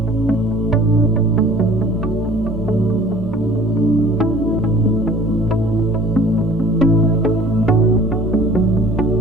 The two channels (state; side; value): normal; both; correlation 0.49